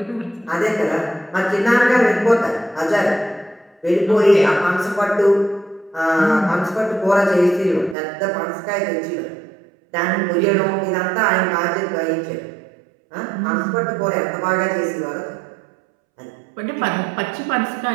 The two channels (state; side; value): drops out; left; at 8.0 s